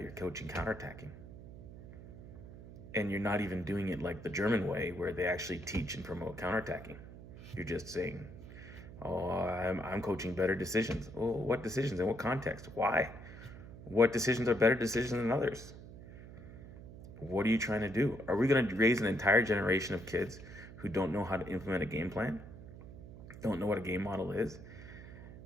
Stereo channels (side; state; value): right; noise; hum, 15 dB below the sound